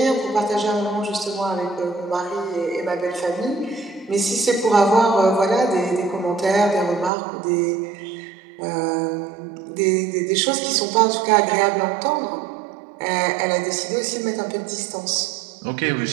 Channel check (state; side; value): drops out; left; at 7.1 s